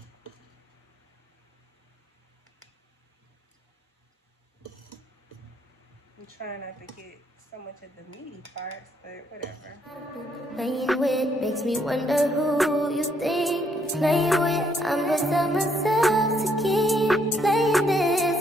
I'm trying not to get so much of the meaty parts, but whatever. Playing with makes me wonder who you think you're playing with. I'm beside myself to keep playing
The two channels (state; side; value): normal; both; correlation 0.71